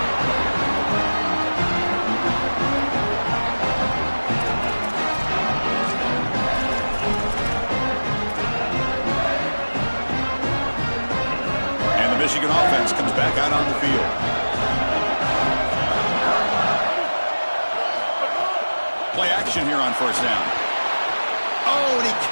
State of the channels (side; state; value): both; inverted; correlation -1.00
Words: And the Michigan offense comes back out on the field. Play action here on first down. Oh, and he